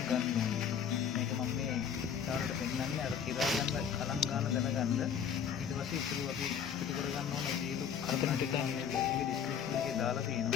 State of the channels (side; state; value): right; quieter; 7.8 dB